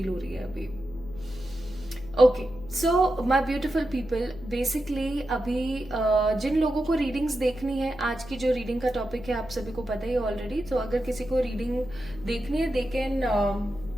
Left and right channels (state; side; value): noise; left; hum, 16 dB below the sound